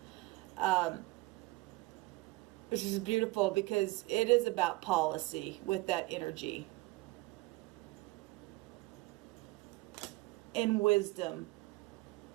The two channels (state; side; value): quieter; left; 21.6 dB